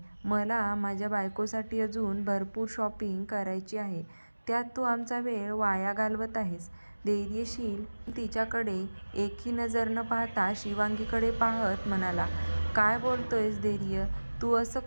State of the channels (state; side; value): inverted; both; correlation -1.00